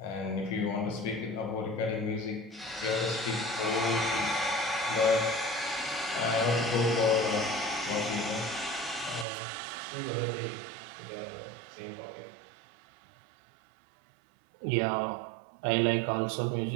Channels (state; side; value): drops out; left; at 9.2 s